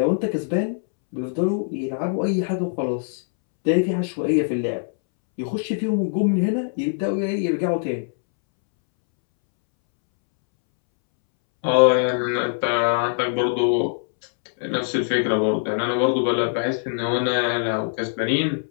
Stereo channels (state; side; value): silent; right; 64 dB below the other